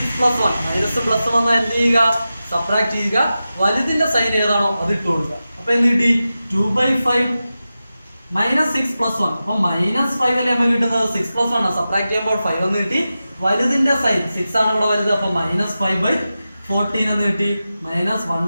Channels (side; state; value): both; inverted; correlation -0.93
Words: + 1, മൈനസ് പ്ലസ് വന്നാൽ എന്ത് ചെയ്യുക, സബ്ട്രാക്ട് ചെയ്യുക, വലുതിന്റെ സൈൻ ഏതാണോ അത് ഇട്ട് കൊടുക്കുക. അപ്പൊ എന്ത് കിട്ടി, 2/5 -6 + 1. അപ്പൊ -5 അല്ലേ നമുക്ക് കിട്ടുന്നത്, 6 + 1 സബ്ട്രാക്ട് ചെയ്യുമ്പോൾ 5 എന്ന് കിട്ടി. വലുതിന്റെ സൈൻ 6 ആണ് ഇവിടെ വലുത്, അപ്പൊ -5/14 എന്ന് കിട്ടി.